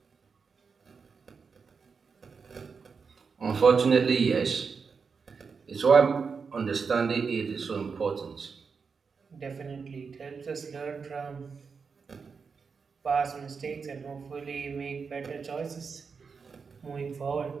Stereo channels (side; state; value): left; quieter; 5.4 dB